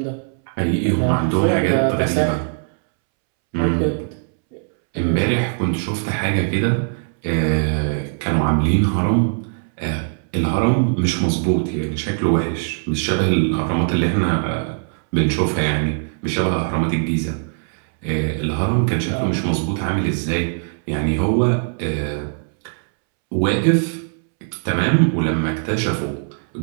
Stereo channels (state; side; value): silent; left; 65 dB below the other